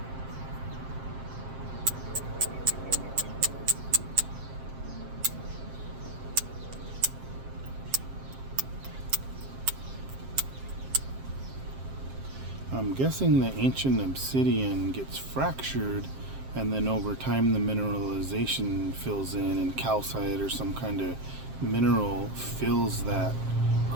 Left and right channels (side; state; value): left; late; 7.6 ms